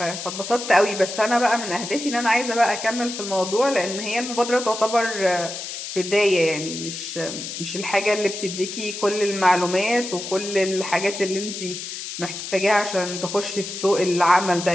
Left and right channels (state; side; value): noise; left; hiss, 8 dB below the sound